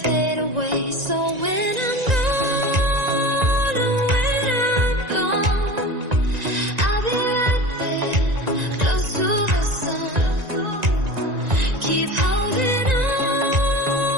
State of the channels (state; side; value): late; left; 1.9 ms